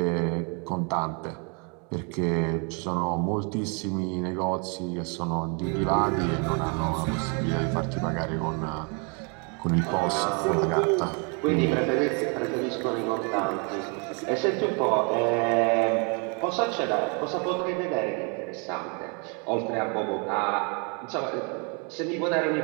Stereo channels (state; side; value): quieter; left; 35.2 dB